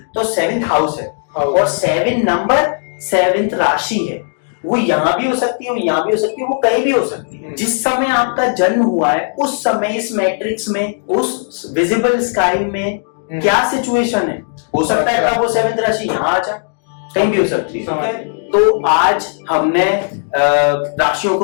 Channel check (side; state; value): right; silent; digital silence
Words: तो 7th हाउस है। और 7 नंबर 7th राशि है। वो यहाँ भी हो सकती है, यहाँ भी हो सकती है, वो कहीं भी हो सकती है। जिस समय आपका जन्म हुआ है उस समय इस मैट्रिक्स में, उस विजिबल स्काई में क्या सिचुएशन है, हो सकता है तब वो 7th राशि यहाँ आ जाए, कहीं भी हो सकती है। तो आज हमने राशियों